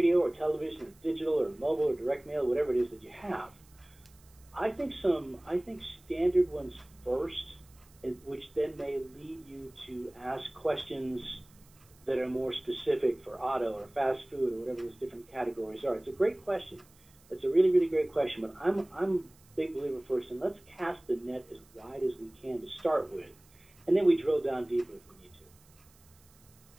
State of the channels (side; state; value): right; noise; hiss, 28 dB below the sound